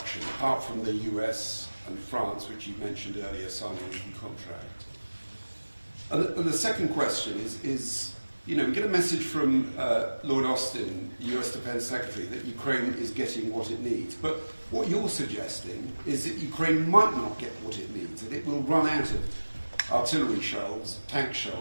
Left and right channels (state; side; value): inverted; both; correlation -1.00